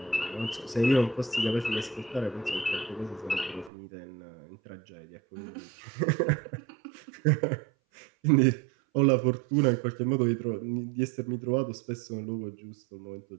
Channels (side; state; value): left; drops out; at 3.7 s